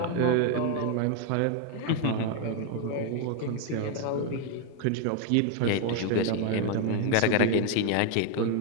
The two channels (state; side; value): different; both; correlation 0.01